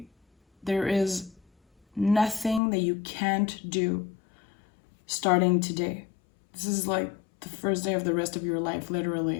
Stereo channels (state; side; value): drops out; right; at 2.6 s